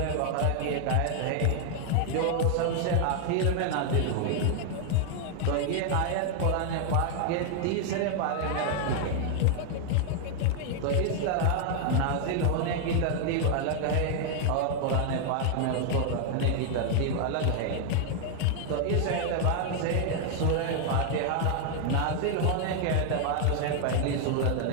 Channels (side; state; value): both; different; correlation 0.00